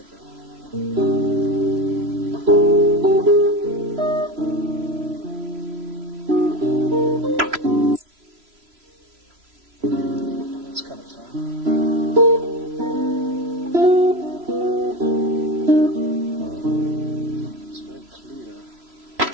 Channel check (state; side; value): late; left; 3.0 ms